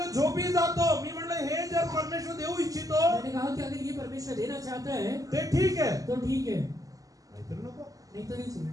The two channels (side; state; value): left; late; 0.17 ms